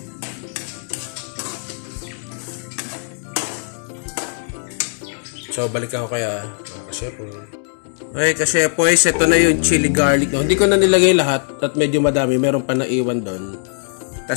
So, balik ako kaya mga kasyepo. Okay, kasyepo, ito na yung chili garlic. No? Hindi ko na nilagay lahat at medyo madami. Meron pa naiwan doon.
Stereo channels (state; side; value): silent; right; 57 dB below the other